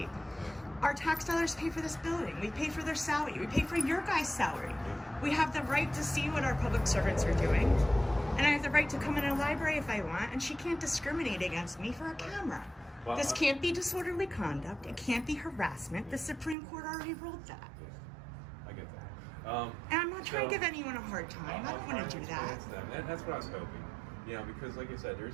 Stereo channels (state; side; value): drops out; left; at 16.6 s